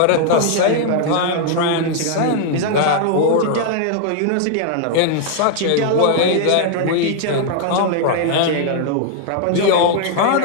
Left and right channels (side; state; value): both; different; correlation 0.00